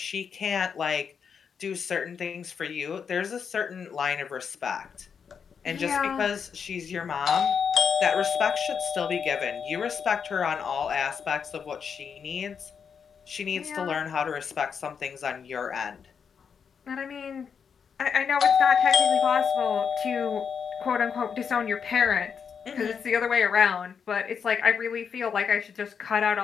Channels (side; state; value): right; quieter; 6.7 dB